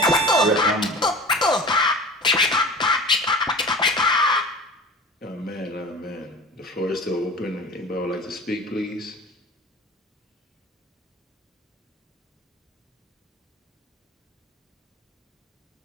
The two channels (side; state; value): both; normal; correlation 0.37